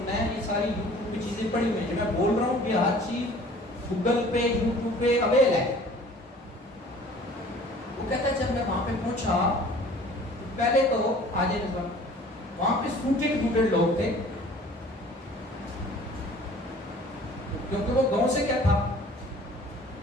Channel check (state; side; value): normal; both; correlation 0.50